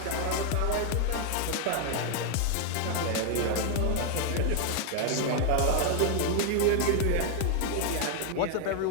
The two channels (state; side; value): different; both; correlation 0.00